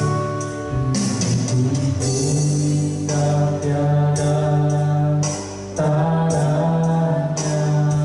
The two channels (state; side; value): identical; both; correlation 1.00